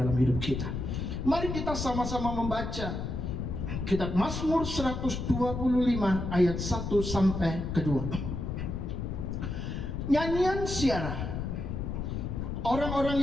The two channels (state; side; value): noise; left; rumble, 4 dB below the sound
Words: dalam hidup kita. Mari kita sama-sama membaca kitab Mazmur 125 ayat 1 sampai ke 2. Nyanyian Syarah. Orang-orang